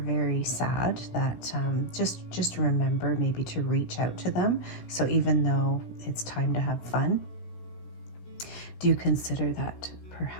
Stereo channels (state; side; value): late; right; 16 ms